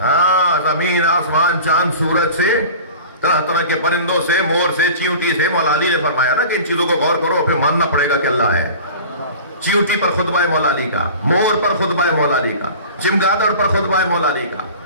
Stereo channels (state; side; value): inverted; both; correlation -0.39